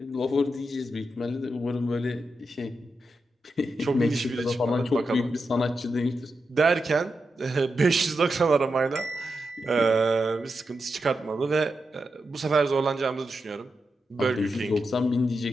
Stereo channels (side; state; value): both; normal; correlation 0.87